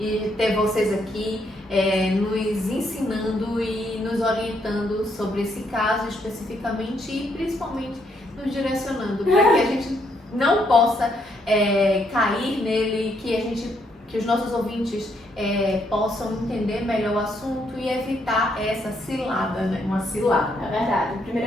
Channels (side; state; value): both; normal; correlation 0.74